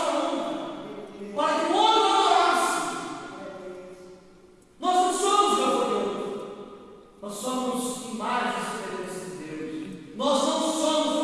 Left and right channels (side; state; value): both; identical; correlation 1.00